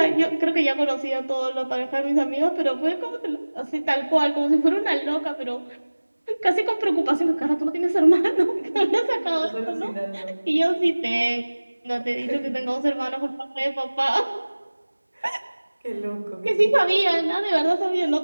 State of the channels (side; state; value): both; inverted; correlation -1.00